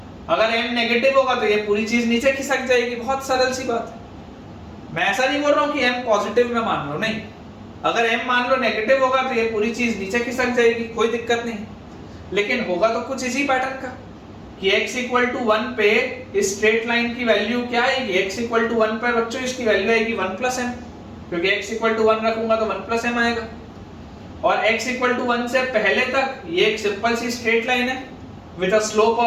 अगर m नेगेटिव होगा तो ये पूरी चीज नीचे खिसक जाएगी, बहुत सरल सी बात है। मैं ऐसा नहीं बोल रहा हूं कि m पॉजिटिव में मान लो, नहीं, अगर m मान लो नेगेटिव होगा तो ये पूरी चीज नीचे खिसक जाएगी, कोई दिक्कत नहीं। लेकिन होगा तो कुछ इसी पैटर्न का कि x equal to 1 पे इस स्ट्रेट लाइन की वैल्यू क्या आएगी, x equal to 1 पे बच्चों इसकी वैल्यू आएगी 1 plus m, क्योंकि x equal to 1 रखूंगा तो 1 plus m आएगा। और x equal to 1 से पहले तक ये एक सिंपल सी स्ट्रेट लाइन है विद अ स्लोप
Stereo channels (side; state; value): both; identical; correlation 1.00